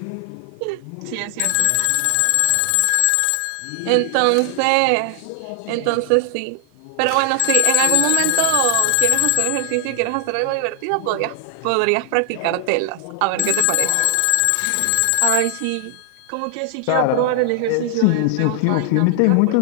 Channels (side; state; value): both; different; correlation 0.00